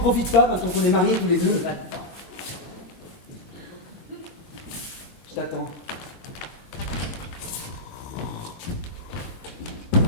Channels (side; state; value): both; normal; correlation -0.02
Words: pas maintenant qu'on est mariés tous les deux? Va-t'en. Je t'attends.